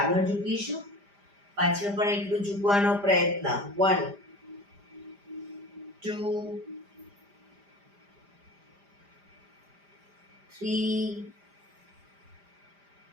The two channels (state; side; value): late; left; 5.0 ms